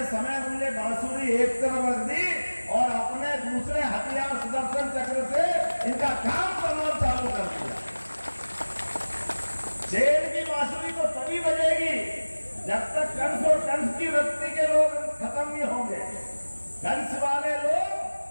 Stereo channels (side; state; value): both; inverted; correlation -1.00